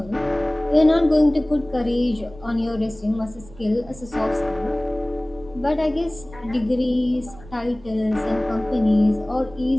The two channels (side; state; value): right; noise; rumble, 20 dB below the sound